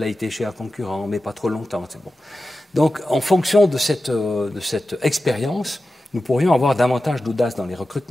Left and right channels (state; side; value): normal; both; correlation 0.93